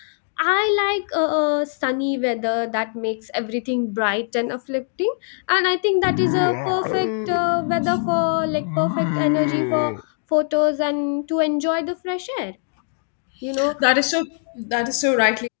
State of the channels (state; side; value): silent; right; digital silence